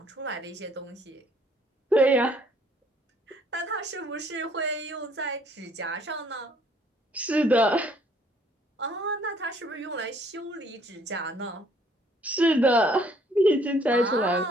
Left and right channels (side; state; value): both; normal; correlation 0.62